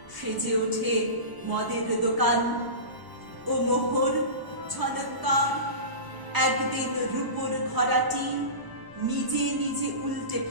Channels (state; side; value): late; left; 1.0 ms